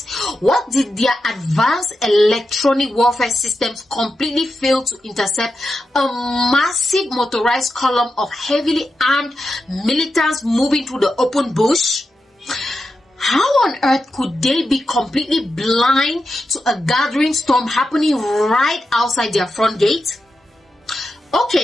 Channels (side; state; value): both; normal; correlation 0.89